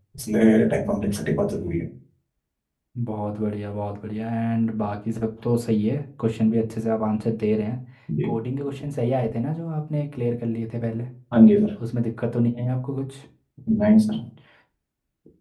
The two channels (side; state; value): both; identical; correlation 1.00